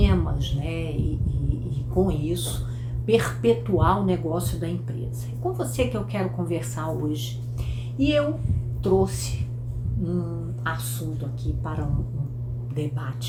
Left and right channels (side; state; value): both; identical; correlation 1.00